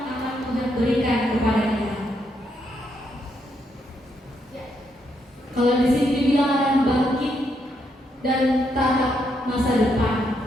akan Tuhan berikan kepada kita. Kalau di sini dibilang akan bangkit dan tatap masa depan.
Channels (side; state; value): both; normal; correlation 0.77